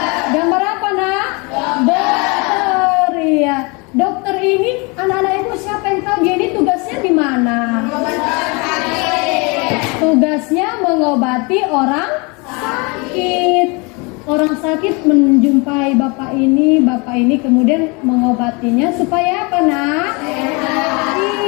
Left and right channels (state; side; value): quieter; right; 29.4 dB